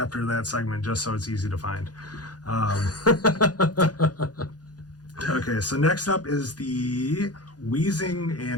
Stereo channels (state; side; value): late; right; 0.69 ms